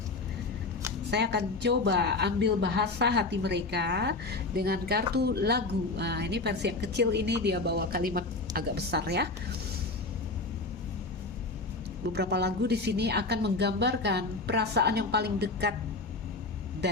Saya akan coba ambil bahasa hati mereka dengan kartu lagu. Nah, ini versi yang kecil, ini dia bawa kalimat agak besar ya. Beberapa lagu di sini akan menggambarkan perasaan yang paling dekat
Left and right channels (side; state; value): right; quieter; 3.5 dB